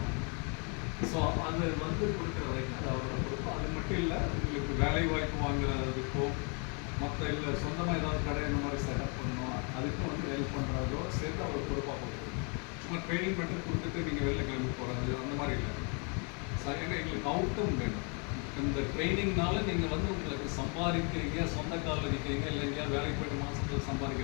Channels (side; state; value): right; quieter; 36.0 dB